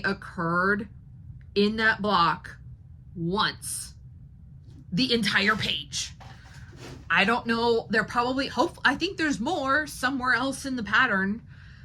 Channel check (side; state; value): both; identical; correlation 1.00